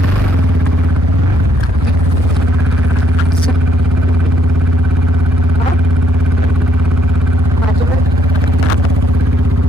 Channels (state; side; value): normal; both; correlation 0.73